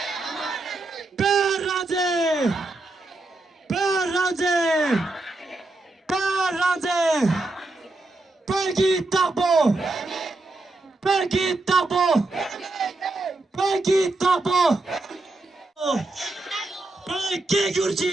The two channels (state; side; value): quieter; left; 3.1 dB